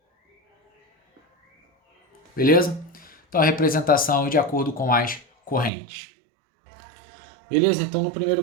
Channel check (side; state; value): left; drops out; at 5.7 s